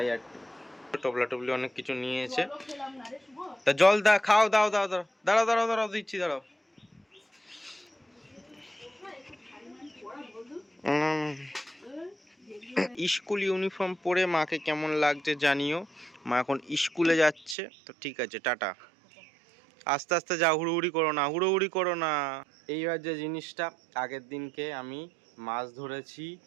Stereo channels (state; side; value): drops out; left; at 17.6 s